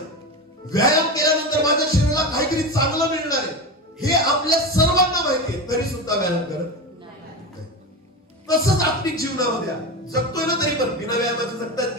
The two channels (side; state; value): both; normal; correlation 0.21